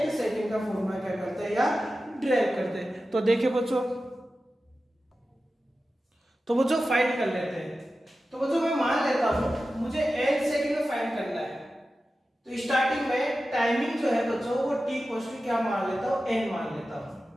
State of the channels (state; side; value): normal; both; correlation 0.93